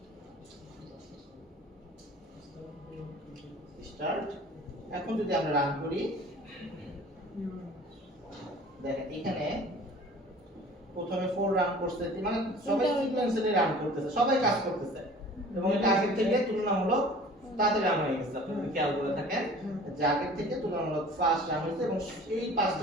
এখন যদি আমরা রান করি দেখেন এখানে প্রথমে 4 রান করছে, মানে সবাই সিকোয়েন্সিয়ালি রান করতেছে, সবাই কাজ করতেছে এবং এটা আগের থেকে তুলনামূলক তাড়াতাড়ি রান হয়ে গেছে। আপনি যদি খেয়াল করে থাকেন যে আগের থেকে তুলনামূলক ফাস্ট রান হয়েছে এবং এই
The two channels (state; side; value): normal; both; correlation 0.46